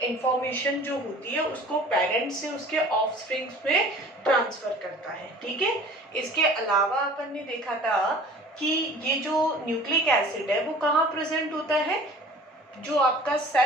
इंफॉर्मेशन जो होती है उसको पेरेंट्स से उसके ऑफस्प्रिंग्स में ट्रांसफर करता है। ठीक है, इसके अलावा अपन ने देखा था कि ये जो न्यूक्लिक एसिड है वो कहाँ प्रेजेंट होता है, जो आपका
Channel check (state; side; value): normal; both; correlation 0.45